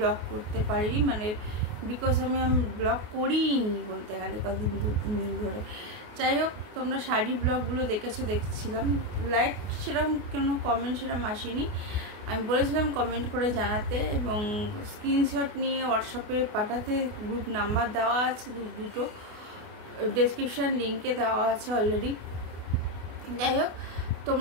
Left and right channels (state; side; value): late; left; 28 ms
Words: করতে পারিনি, মানে বিকজ আমি ব্লগ করিনি বলতে গেলে কদিন 2-3 দিন ধরে। যাই হোক, তোমরা শাড়ি ব্লগগুলো দেখেছো, দেখছিলাম। লাইক সেরকম কোনো কমেন্ট সেরকম আসেনি। আমি বলেছিলাম কমেন্ট করে জানাতে এবং স্ক্রিনশট নিয়ে হোয়াটসঅ্যাপে পাঠাতে। গ্রুপ নাম্বার দেওয়া আছে দুটো, ডেসক্রিপশান লিঙ্কে দেওয়া আছে অলরেডি। যাই হোক,